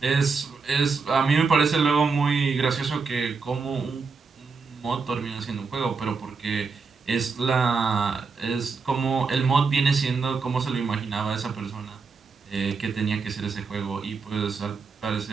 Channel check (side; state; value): left; quieter; 4.8 dB